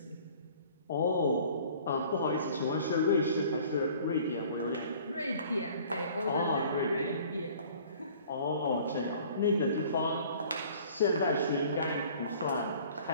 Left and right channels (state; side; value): inverted; both; correlation -0.50